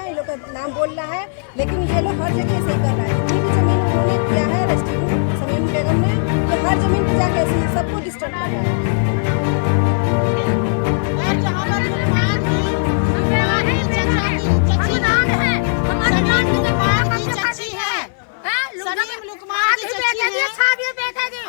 ये लोग का नाम बोल रहा है, लेकिन ये लोग हर जगह ऐसे ही कर रहा है। जितनी भी जमीन उन्होंने किया है रजिस्ट्री समीम बेगम ने, तो हर जमीन पर जाके ऐसे सबको डिस्टर्ब कर रहा है। और जहाँ पर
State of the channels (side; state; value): right; silent; 59 dB below the other